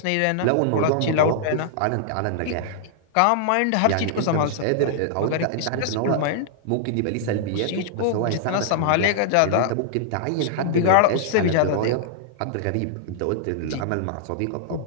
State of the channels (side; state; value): both; different; correlation -0.01